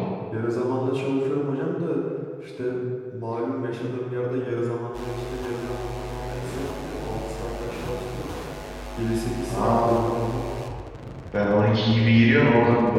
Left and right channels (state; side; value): identical; both; correlation 1.00